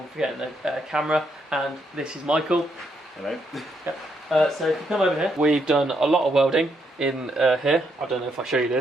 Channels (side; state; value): both; normal; correlation 0.76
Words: forgetting the camera, and this is Michael. Hello. Yep. So if you come over here, we've done a lot of welding in here. I don't know if I show you